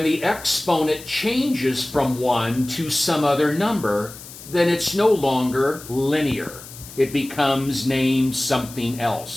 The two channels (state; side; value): noise; left; hiss, 16 dB below the sound